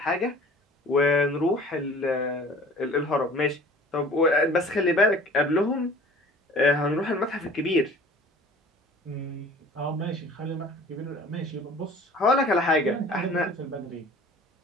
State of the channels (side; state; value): both; normal; correlation 0.47